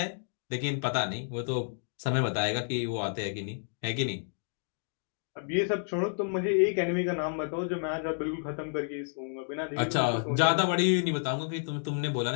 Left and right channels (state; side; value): silent; right; digital silence